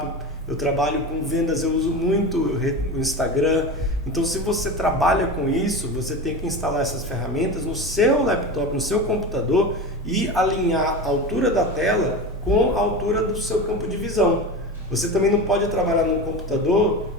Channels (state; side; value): normal; both; correlation 0.26